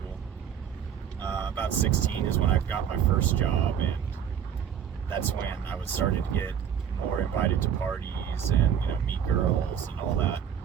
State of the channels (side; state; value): left; quieter; 8.5 dB